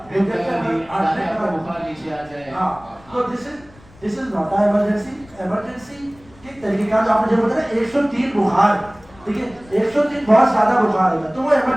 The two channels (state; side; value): noise; left; rumble, 25 dB below the sound